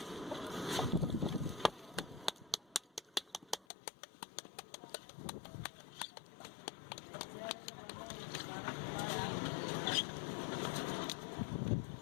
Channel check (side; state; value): right; drops out; at 3.7 s